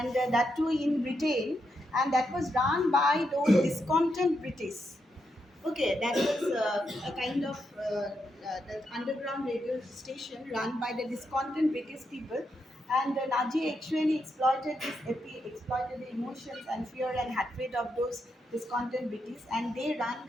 that too in Britain, and that was run by those discontent British. Okay, that was a kind of the underground radio station run by the discontent British people, and the Nazi actually exploited the emotions and fear and hatred of those discontent British, and they ran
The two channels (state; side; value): normal; both; correlation 0.82